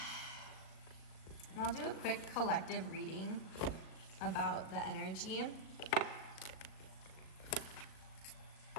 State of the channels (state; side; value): late; right; 38 ms